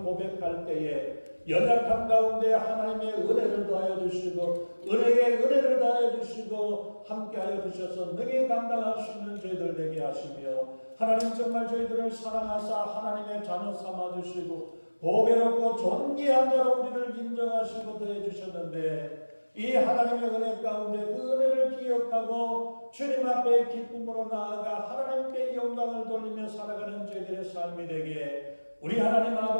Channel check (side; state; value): both; inverted; correlation -1.00